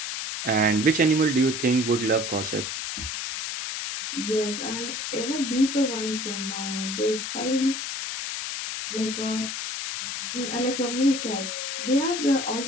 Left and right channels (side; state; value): left; noise; hiss, 4 dB below the sound